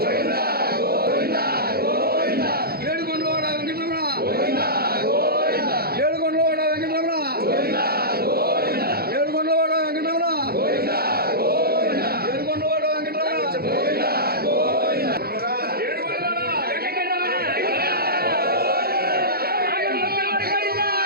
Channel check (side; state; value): left; late; 0.45 ms